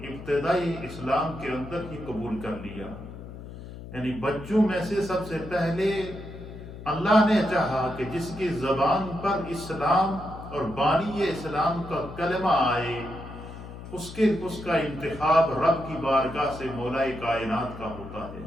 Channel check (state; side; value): noise; left; hum, 13 dB below the sound